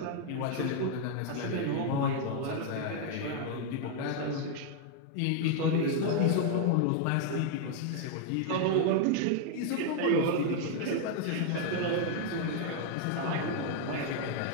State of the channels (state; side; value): different; both; correlation 0.00